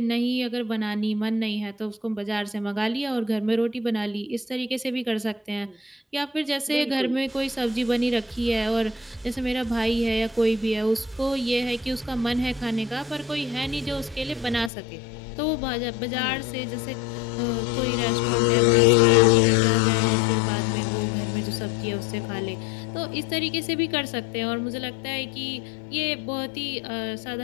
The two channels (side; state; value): right; drops out; at 14.7 s